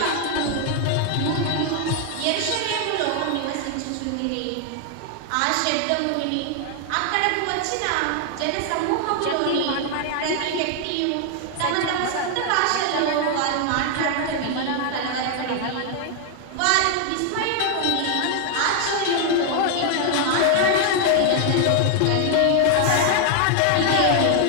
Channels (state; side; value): different; both; correlation 0.00